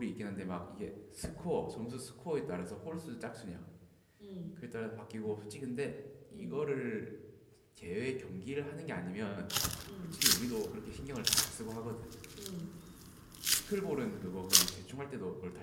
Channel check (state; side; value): identical; both; correlation 1.00